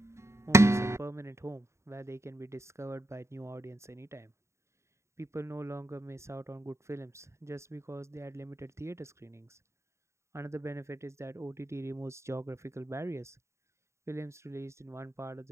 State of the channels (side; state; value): left; late; 0.14 ms